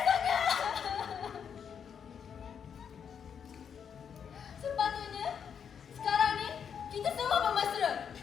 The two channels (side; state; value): right; quieter; 7.5 dB